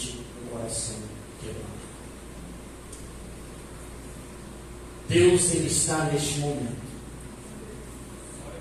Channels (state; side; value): identical; both; correlation 1.00